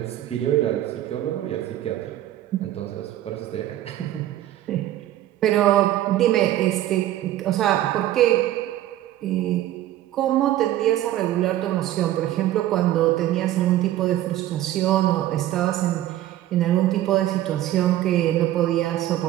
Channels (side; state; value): left; quieter; 13.6 dB